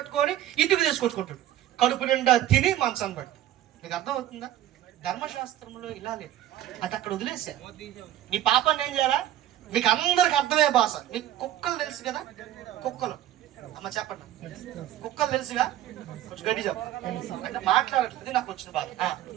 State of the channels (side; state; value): left; quieter; 12.8 dB